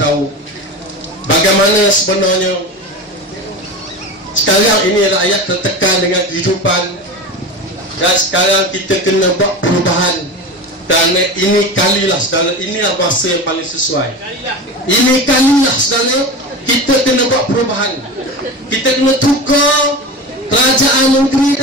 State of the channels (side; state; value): both; normal; correlation 0.28